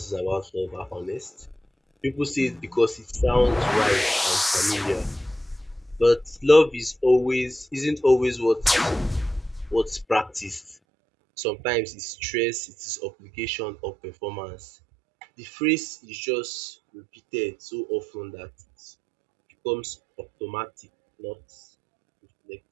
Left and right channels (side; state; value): left; drops out; at 10.8 s